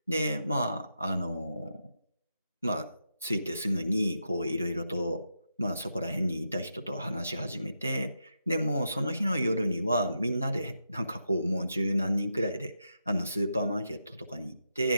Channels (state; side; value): inverted; both; correlation -0.85